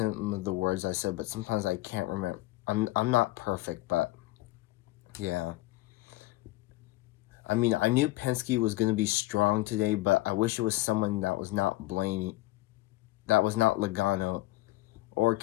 of the words I said, but sometimes I can't remember. I'm not perfect, but yeah. I mean, I knew Penske was going to be strong today, but I wish it was someone that was not Blaney, that was not Logano or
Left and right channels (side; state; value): right; quieter; 18.6 dB